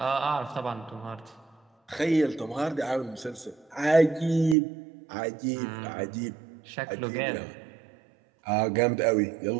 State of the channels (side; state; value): left; drops out; at 4.5 s